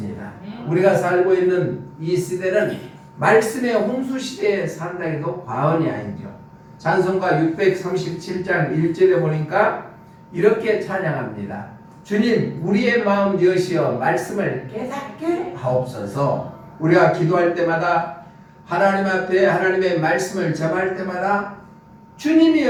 우리가 살고 있는 이 시대는 말씀의 홍수 시대에 산다 해도 과언이 아니죠. 찬송가 637장 1절에 보니까 이렇게 찬양합니다. 주님 우리의 마음 여시어 말씀을 깨닫게 하옵소서. 우리가 기도할 때마다 하나님 앞에 하나님의 말씀을 접할 때마다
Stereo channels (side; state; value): both; identical; correlation 1.00